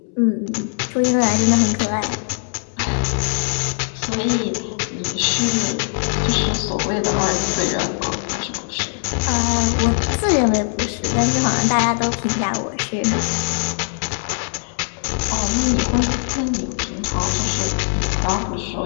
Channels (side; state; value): right; silent; 65 dB below the other